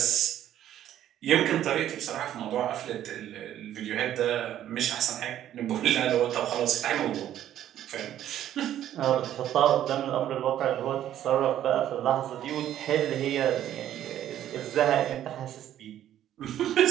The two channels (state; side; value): quieter; left; 11.6 dB